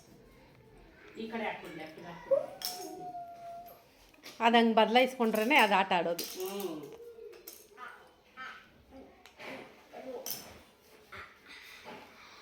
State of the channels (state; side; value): identical; both; correlation 1.00